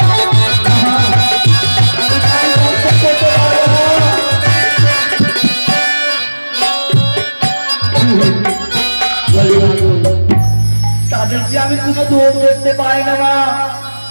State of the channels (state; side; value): inverted; both; correlation -1.00